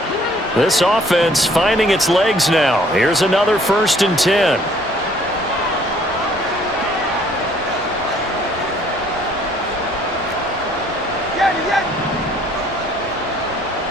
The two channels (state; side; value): normal; both; correlation 0.60